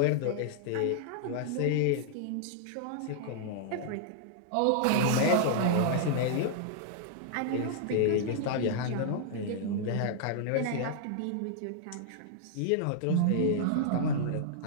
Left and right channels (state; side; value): different; both; correlation -0.01